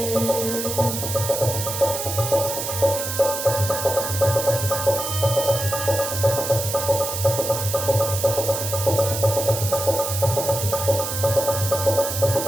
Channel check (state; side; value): noise; right; hiss, 4 dB below the sound